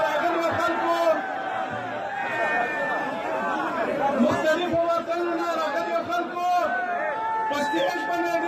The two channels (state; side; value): identical; both; correlation 1.00